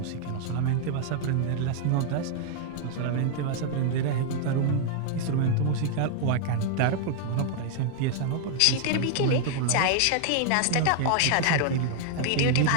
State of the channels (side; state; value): both; different; correlation 0.00